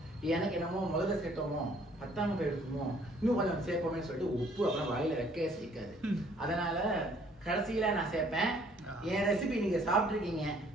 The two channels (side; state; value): both; normal; correlation 0.61